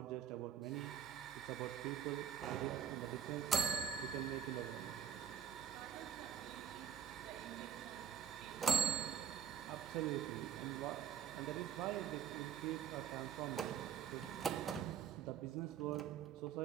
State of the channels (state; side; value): quieter; left; 8.1 dB